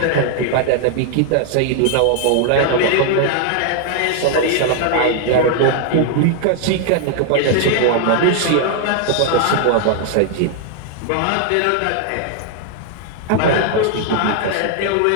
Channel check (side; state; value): both; different; correlation 0.00